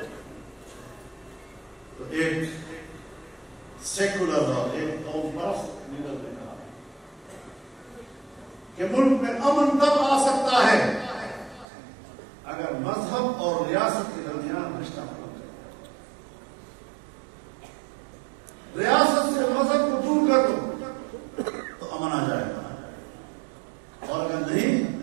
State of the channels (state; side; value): drops out; left; at 11.7 s